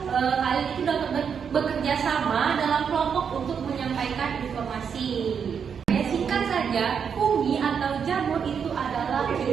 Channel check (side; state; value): left; quieter; 7.0 dB